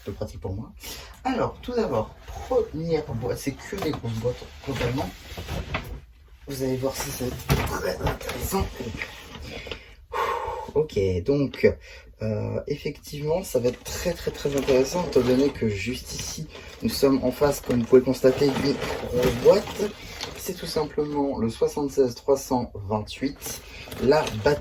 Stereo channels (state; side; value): identical; both; correlation 1.00